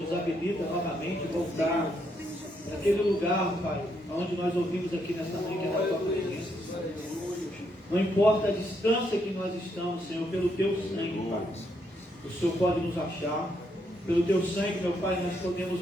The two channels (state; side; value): normal; both; correlation 0.76